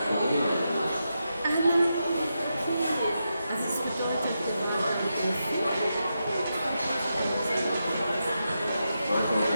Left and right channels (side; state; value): both; inverted; correlation -0.87